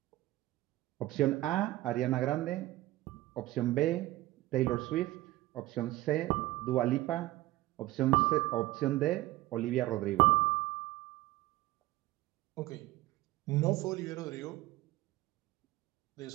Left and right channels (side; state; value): left; quieter; 17.3 dB